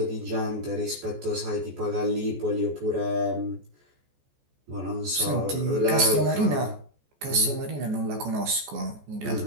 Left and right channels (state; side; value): late; left; 14 ms